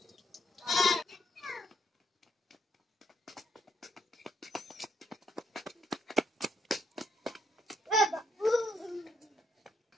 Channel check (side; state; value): both; normal; correlation 0.74